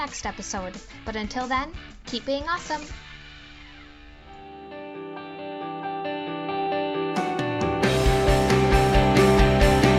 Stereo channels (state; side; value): identical; both; correlation 1.00